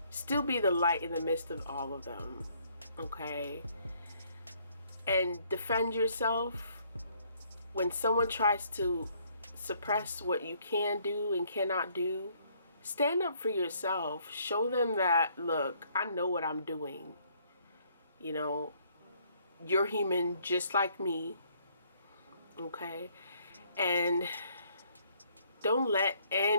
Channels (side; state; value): both; inverted; correlation -0.66